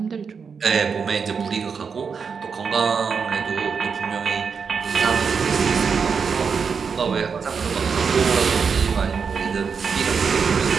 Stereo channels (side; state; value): left; quieter; 5.9 dB